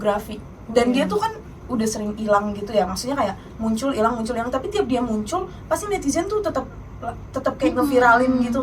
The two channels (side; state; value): both; identical; correlation 1.00